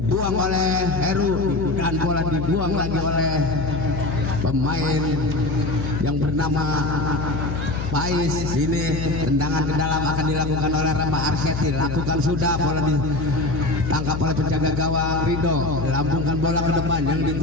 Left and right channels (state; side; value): noise; left; hum, 5 dB below the sound